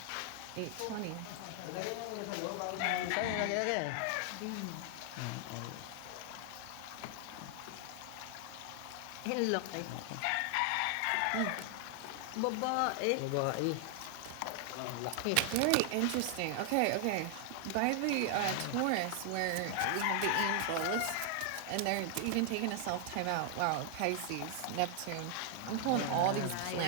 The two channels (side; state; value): both; different; correlation 0.00